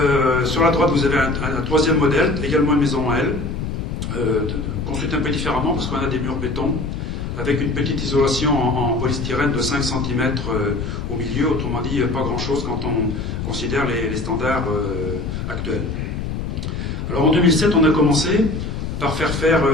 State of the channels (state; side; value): noise; left; rumble, 4 dB below the sound